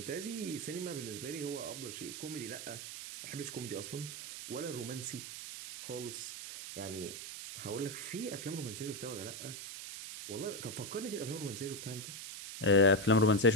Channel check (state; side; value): noise; right; hiss, 8 dB below the sound